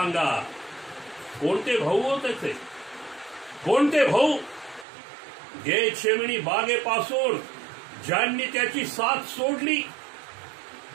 कोणते भाऊ हो त्याचे? कोणते भाऊ? गेतशेमनी बागेपासून ज्यांनी त्याची साथ सोडली,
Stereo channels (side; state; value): left; drops out; at 4.9 s